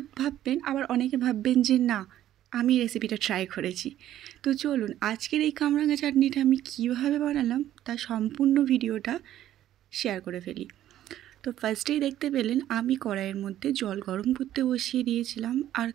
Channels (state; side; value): quieter; left; 12.4 dB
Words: ভাববেন, আবার অনেকে ভাববেন যে না আমি রেসিপিটা ট্রাই করেছি। তো চলুন আজকের এই কামরাঙা চাটনিটা আমি কীভাবে বানালাম তার সম্পূর্ণ ভিডিওটা শেয়ার করে ফেলি। তো ফার্স্টেই দেখতে পেলেন আমি কড়াইয়ের মধ্যে জল গরম করতে বসিয়ে দিয়েছিলাম, আর